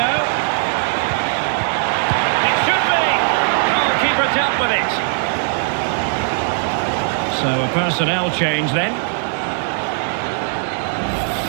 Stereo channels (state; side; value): silent; left; 67 dB below the other